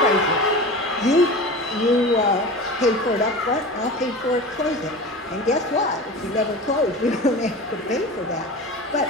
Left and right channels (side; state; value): both; normal; correlation 0.32